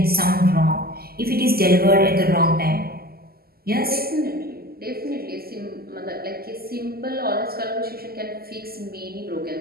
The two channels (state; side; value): late; left; 0.45 ms